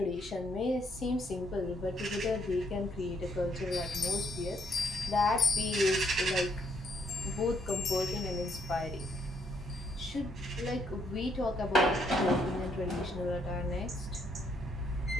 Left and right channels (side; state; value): both; normal; correlation 0.71